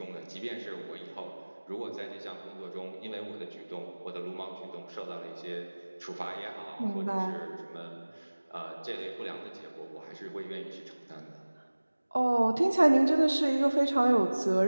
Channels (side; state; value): both; inverted; correlation -1.00